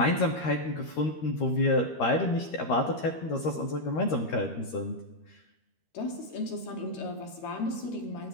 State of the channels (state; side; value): late; right; 13 ms